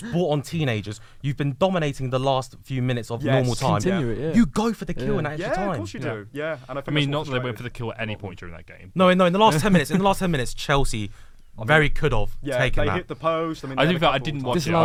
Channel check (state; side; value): identical; both; correlation 1.00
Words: brought on teenagers. You've been dominating the last few minutes of Yes. normal time. Continue it, yeah. You go for the kill Yeah. in that extra yeah, time. of course you do. Yeah, and I I think mean, that's not what that they went frustrated- for the kill at any point during that game. No, in the last 10 minutes. In the last 10 minutes, Chelsea very could have Yeah, taken they that. hit the post. I mean, I they didn't. had a I couple didn't of watch times. it. I